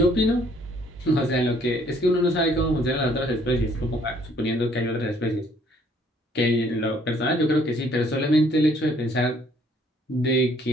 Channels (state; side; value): normal; both; correlation 0.62